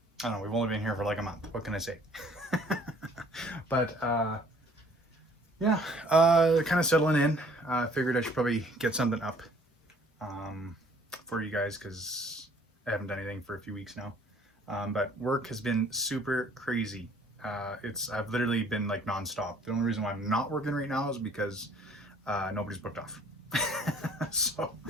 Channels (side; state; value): both; normal; correlation 0.56